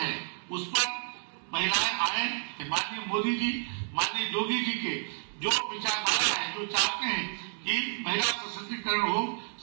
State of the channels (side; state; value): left; silent; 57 dB below the other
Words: उस पर महिलाएं आए। माननीय मोदी जी, माननीय योगी जी के जो विचारधारा है, जो चाहते हैं कि महिला सशक्तिकरण हो,